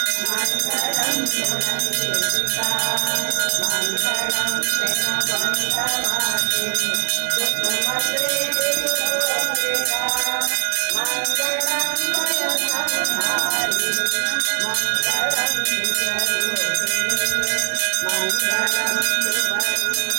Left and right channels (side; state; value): left; silent; 59 dB below the other